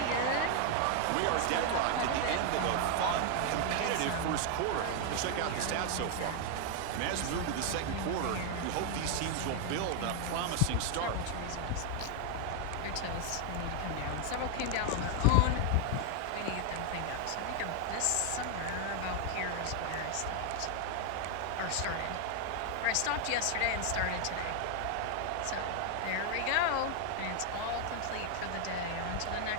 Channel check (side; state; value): both; different; correlation 0.00